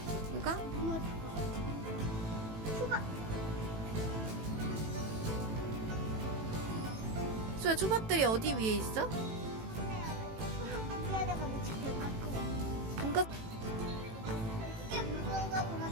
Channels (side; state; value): left; late; 18 ms